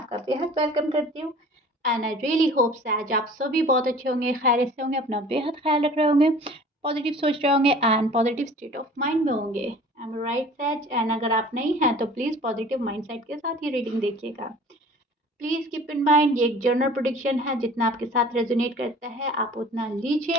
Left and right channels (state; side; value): normal; both; correlation 0.46